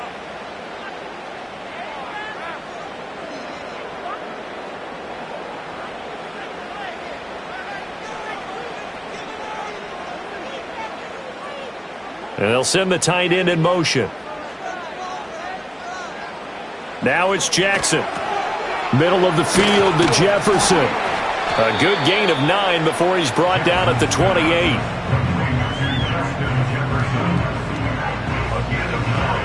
And they'll send the tight end in motion. Now it's Jackson. Middle of the field to Jefferson. A good gain of 9 before he's brought down at the 28.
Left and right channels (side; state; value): both; identical; correlation 1.00